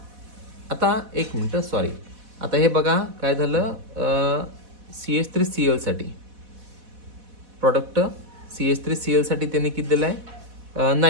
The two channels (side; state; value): left; late; 4.1 ms